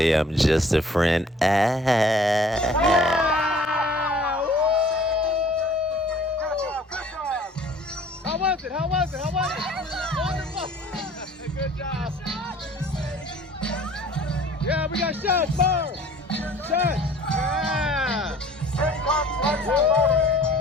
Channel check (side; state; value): both; normal; correlation 0.52